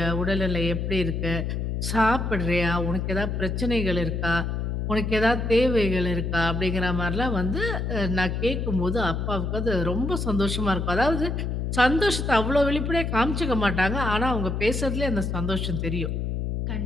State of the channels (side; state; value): left; noise; hum, 2 dB below the sound